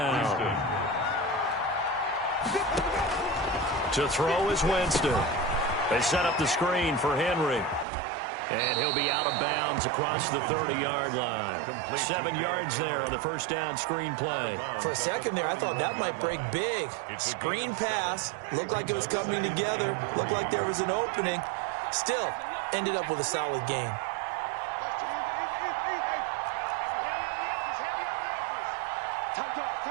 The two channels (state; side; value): drops out; left; at 7.9 s